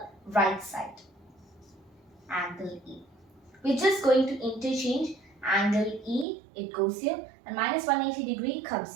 right side. Angle E. We're just going to interchange angle E, it goes here, and minus 180 degree comes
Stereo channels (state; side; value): drops out; left; at 6.2 s